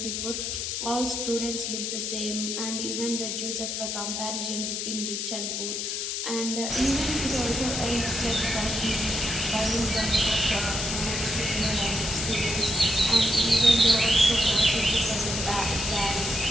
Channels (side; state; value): left; noise; hiss, 2 dB below the sound